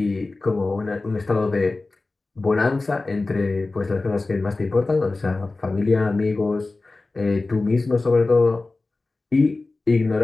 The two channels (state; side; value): quieter; right; 3.4 dB